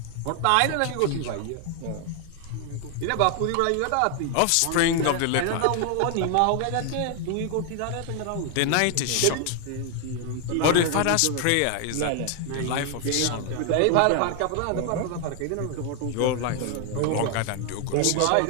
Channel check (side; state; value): both; different; correlation 0.00